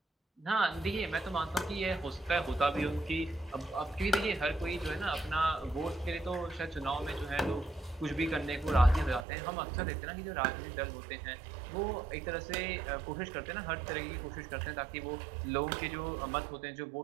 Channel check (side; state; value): left; drops out; at 9.2 s